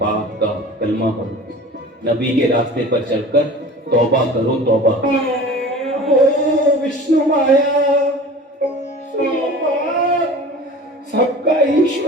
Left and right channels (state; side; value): normal; both; correlation 0.39